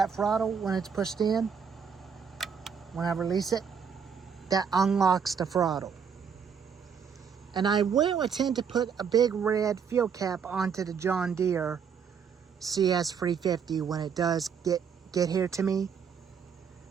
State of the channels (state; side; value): quieter; left; 6.8 dB